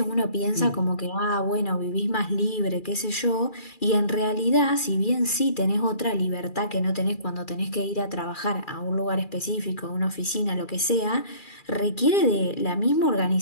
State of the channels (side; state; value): right; late; 2.4 ms